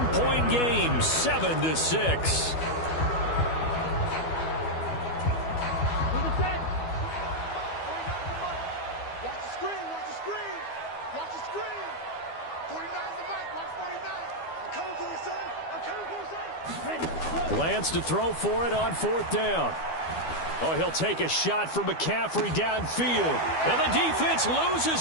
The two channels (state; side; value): late; right; 12 ms